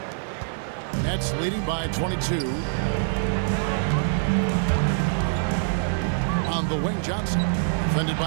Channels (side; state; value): left; silent; digital silence